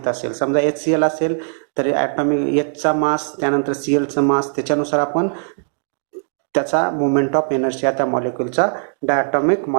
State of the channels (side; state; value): left; silent; digital silence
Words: असेल. समजा HCl असेल तर ॲटॉमिक Hचा मास त्यानंतर Clचं मास त्याच्यानुसार आपण त्याचा मोमेंट ऑफ एनर्शिया त्या मॉलिक्यूलचा डायटॉमिक